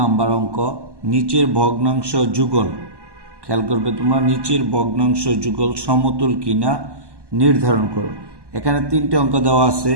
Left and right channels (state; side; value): late; left; 1.1 ms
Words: অঙ্ক, নিচের ভগ্নাংশ যুগল। খেয়াল করবে তোমরা, নিচের ভগ্নাংশ যুগল সমতুল কিনা নির্ধারণ করো। এখানে তিনটে অঙ্ক দেওয়া আছে।